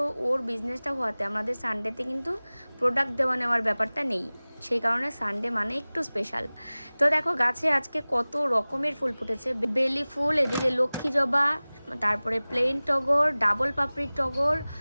ওর বিজনেসটা হওয়াতে আমাদের সানডেতে কিন্তু প্রোডাক্ট দেওয়া নেওয়ার ব্যাপারটা নেই। সেই কারণে সানডে মানে একটু স্পেশাল। তো দেখো গাছে আজকে কত রকমের ফুল ফুটেছে। বেলি ফুল, এদিকে লক্ষ্মী জবা, তারপরে প্লেন টগর, ডাবল পাপড়ির টগর,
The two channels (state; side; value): inverted; both; correlation -0.99